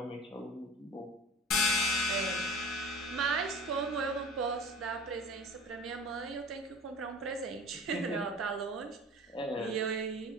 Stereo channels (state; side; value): normal; both; correlation 0.40